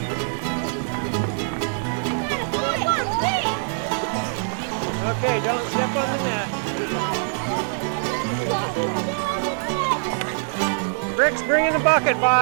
Okay, don't step on the net. Rick's bringing the bucket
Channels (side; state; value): left; silent; digital silence